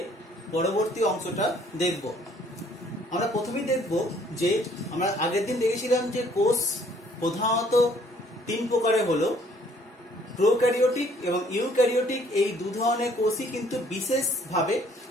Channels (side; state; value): both; normal; correlation 0.61